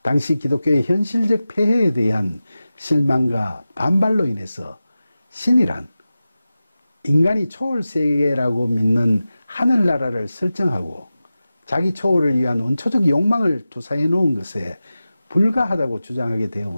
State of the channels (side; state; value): both; inverted; correlation -0.94